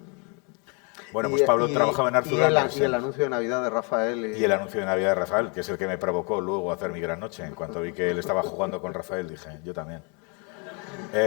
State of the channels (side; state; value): right; quieter; 34.9 dB